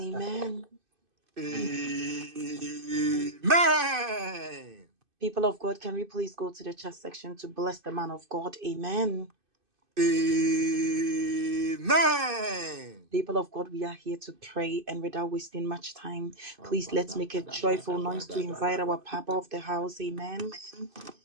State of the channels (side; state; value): left; late; 2.5 ms